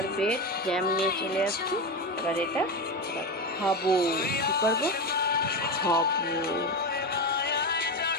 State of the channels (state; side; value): normal; both; correlation 0.17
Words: বেড জ্যাম নিয়ে চলে আসছি। এবার এটা খাবো, কি করবো, খাবো।